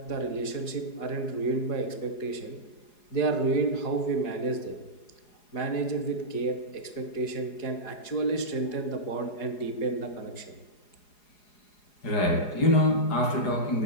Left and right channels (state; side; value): late; right; 4.8 ms